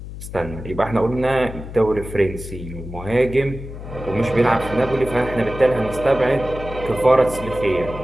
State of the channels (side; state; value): left; noise; hum, 11 dB below the sound